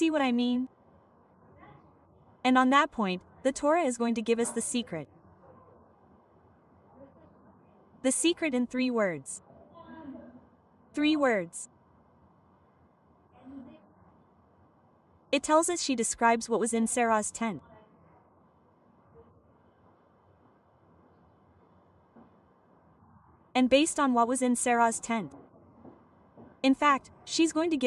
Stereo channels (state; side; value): identical; both; correlation 1.00